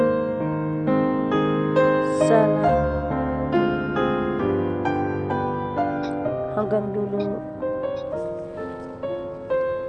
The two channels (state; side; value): identical; both; correlation 1.00